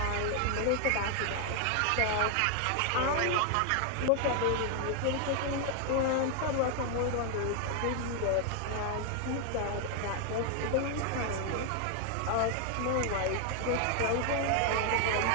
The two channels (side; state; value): both; different; correlation 0.00